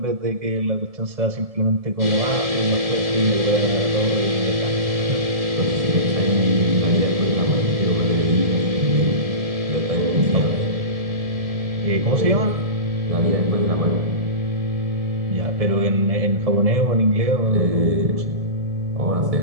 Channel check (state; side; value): late; left; 1.7 ms